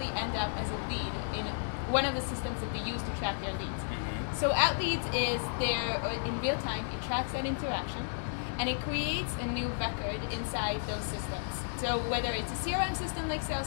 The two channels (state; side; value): silent; right; digital silence